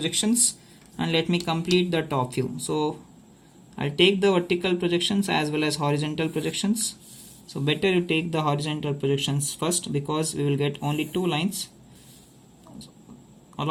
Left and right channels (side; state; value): both; identical; correlation 1.00